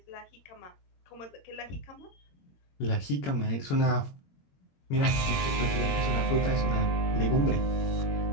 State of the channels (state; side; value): late; right; 22 ms